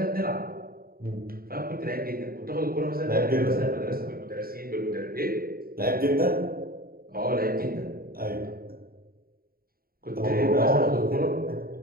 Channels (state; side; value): late; left; 0.43 ms